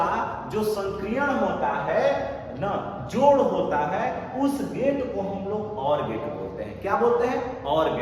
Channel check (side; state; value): both; identical; correlation 1.00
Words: जो संक्रियण होता है ना, जोड़ होता है, उस गेट को हम लोग और गेट बोलते हैं। क्या बोलते हैं, और